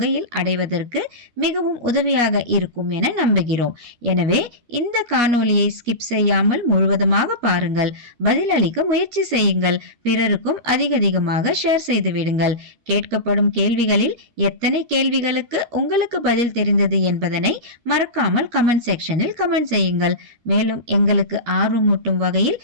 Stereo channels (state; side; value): late; left; 13 ms